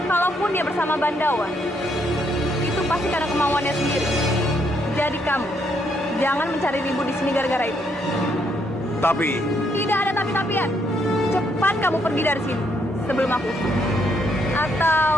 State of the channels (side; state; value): both; normal; correlation 0.73